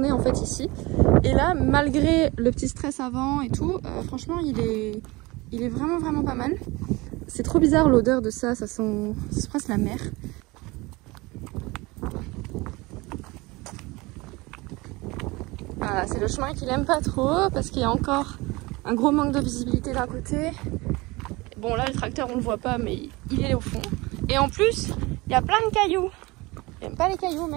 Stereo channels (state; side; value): quieter; left; 23.0 dB